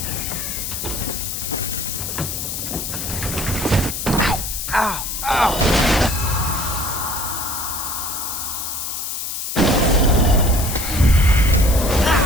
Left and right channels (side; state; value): left; noise; hiss, 4 dB below the sound